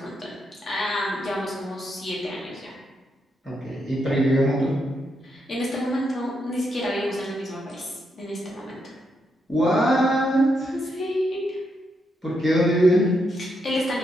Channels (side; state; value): both; normal; correlation 0.81